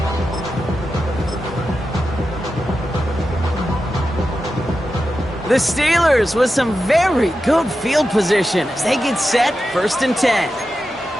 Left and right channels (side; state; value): both; normal; correlation 0.90